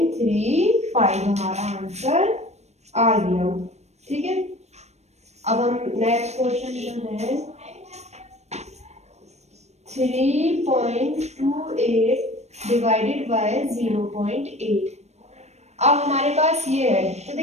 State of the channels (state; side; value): late; left; 0.32 ms